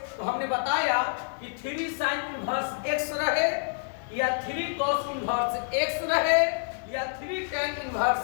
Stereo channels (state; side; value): silent; right; digital silence